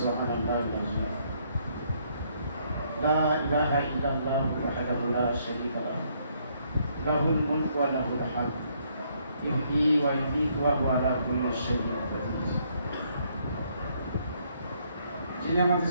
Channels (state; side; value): inverted; both; correlation -0.70